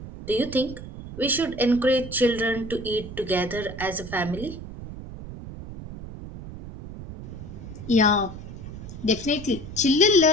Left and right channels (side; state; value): right; noise; rumble, 12 dB below the sound